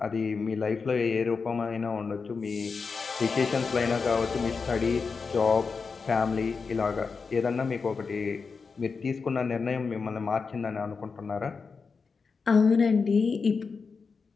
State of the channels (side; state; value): right; quieter; 5.0 dB